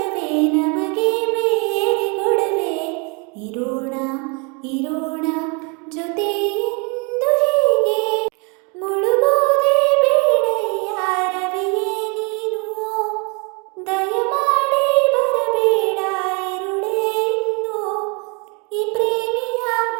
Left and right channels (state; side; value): quieter; left; 32.8 dB